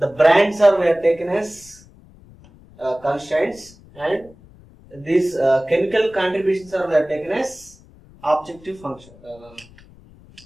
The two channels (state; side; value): noise; left; rumble, 24 dB below the sound